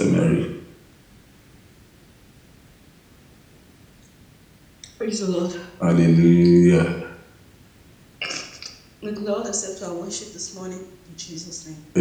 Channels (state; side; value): identical; both; correlation 1.00